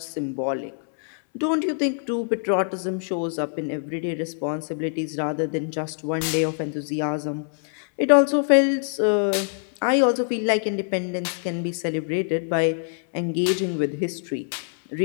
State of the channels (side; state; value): right; silent; 62 dB below the other